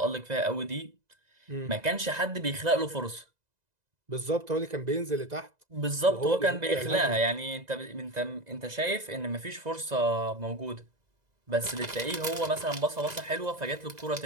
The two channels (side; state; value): left; late; 2.0 ms